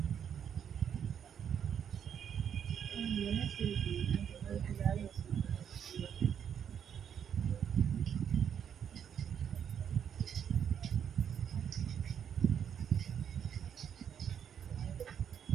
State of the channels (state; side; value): quieter; left; 8.4 dB